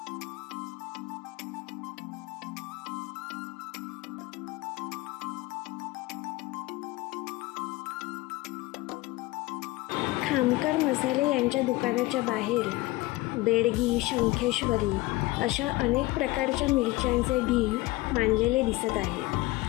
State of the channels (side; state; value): right; quieter; 20.1 dB